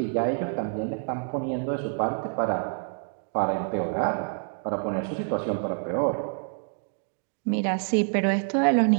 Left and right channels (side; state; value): left; silent; 60 dB below the other